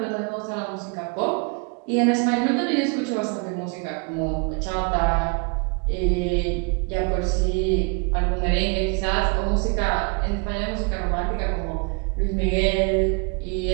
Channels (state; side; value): quieter; left; 33.4 dB